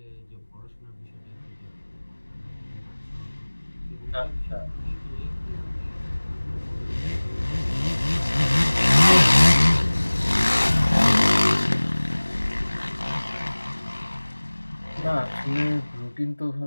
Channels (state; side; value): inverted; both; correlation -1.00